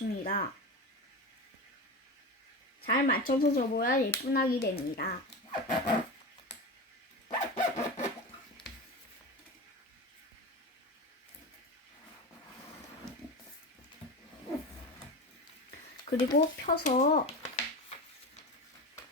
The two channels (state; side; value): normal; both; correlation 0.25